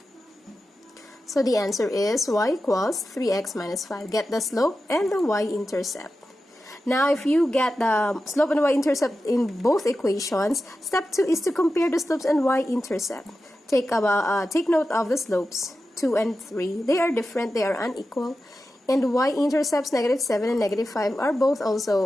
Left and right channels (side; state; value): both; normal; correlation 0.92